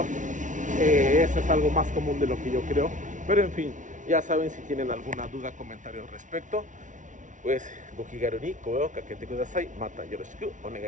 eso es algo más común de lo que yo creo. Pero en fin, ya saben, si tienen alguna duda, comentario al respecto, pues gokigaru ni koe o kakete kudasai. Mata yoroshiku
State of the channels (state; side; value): late; left; 0.37 ms